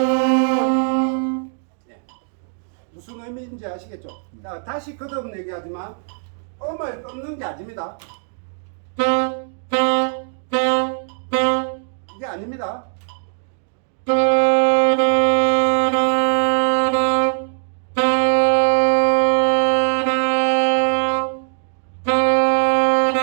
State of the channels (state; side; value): silent; left; 66 dB below the other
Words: 무슨 의미인지 아시겠죠? 자, 다시 거듭 얘기하지만 음을 끊는 게 아닙니다. 이게 아닙니다.